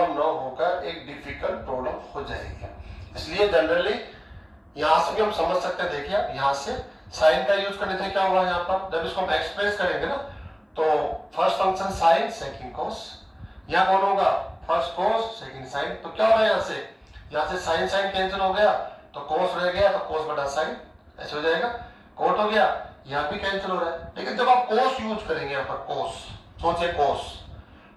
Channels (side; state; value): both; identical; correlation 1.00